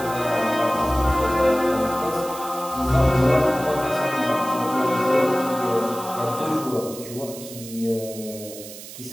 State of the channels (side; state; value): right; noise; hiss, 14 dB below the sound